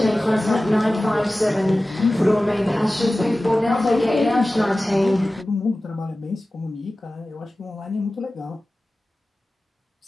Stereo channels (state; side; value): normal; both; correlation 0.96